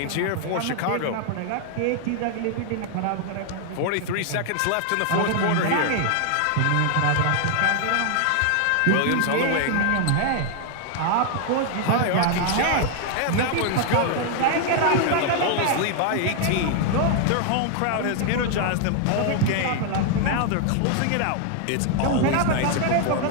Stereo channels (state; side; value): different; both; correlation 0.00